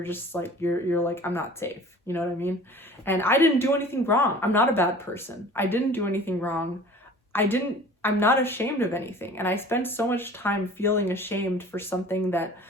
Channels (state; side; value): normal; both; correlation 0.45